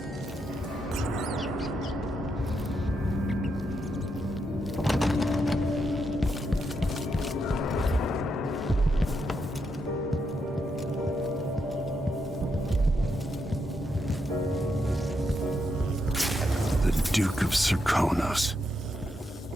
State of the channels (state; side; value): normal; both; correlation 0.81